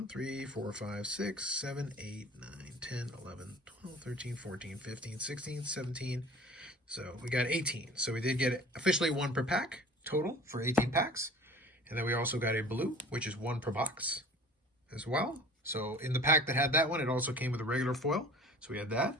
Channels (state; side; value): normal; both; correlation 0.44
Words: 3, 4, 5, 6, 7, 8, 9, 10, 11, 12, 13, 14, 15, 16, 17. So we got 18. So we did get officially 1 per pack total for 18 packs. And then we also got a blue, which is 1 per box as well. So in the pack that had that one, it also came with a regular foil. So we had that.